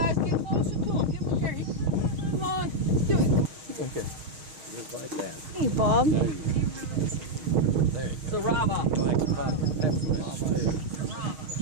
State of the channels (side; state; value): left; late; 6.4 ms